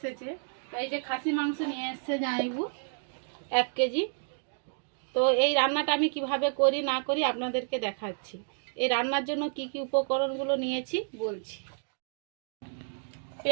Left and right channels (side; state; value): left; silent; digital silence